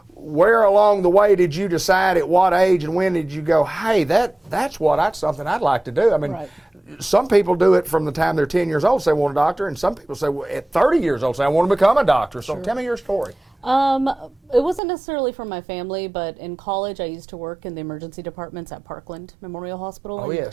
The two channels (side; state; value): left; drops out; at 14.8 s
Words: where along the way did you decide, at what age and when did you go, hey, that's something I'd like to do? I mean, some people do it from the time they're 10 years old, say they want a doctor, and some people say, well, at 30 years old, say I want to become a doctor. So tell me your story. It wasn't necessarily from my family, but in college I used to work in the emergency departments at Parkland Memorial Hospital